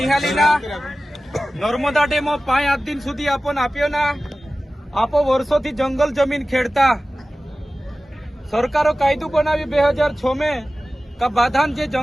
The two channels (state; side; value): normal; both; correlation 0.96